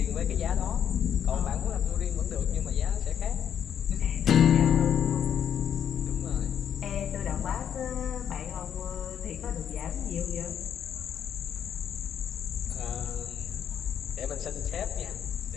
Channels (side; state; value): right; quieter; 8.9 dB